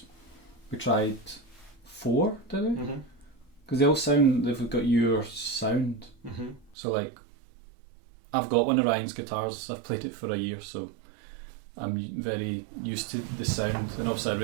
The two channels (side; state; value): left; drops out; at 6.8 s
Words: we tried 4, did we? Because they all sound, they've got your sound. So like, I've got one of Ryan's guitars. I've played it for a year, so I'm very used to the sound, and obviously I